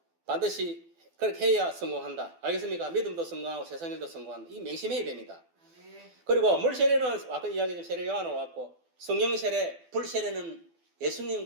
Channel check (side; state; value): left; late; 12 ms